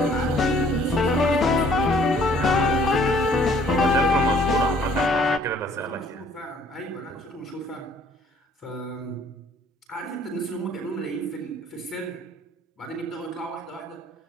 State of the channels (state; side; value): normal; both; correlation 0.59